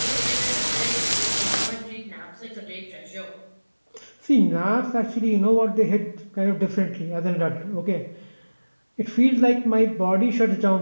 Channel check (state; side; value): inverted; both; correlation -1.00